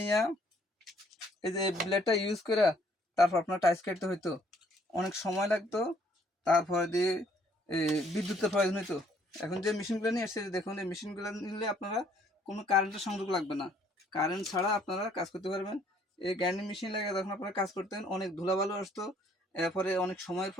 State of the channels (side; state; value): both; normal; correlation 0.63